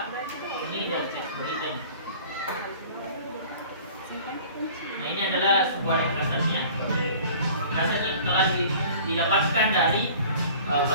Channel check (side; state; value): both; inverted; correlation -0.46